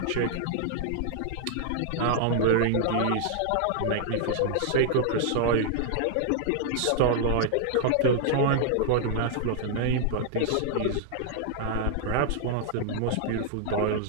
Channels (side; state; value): both; different; correlation -0.01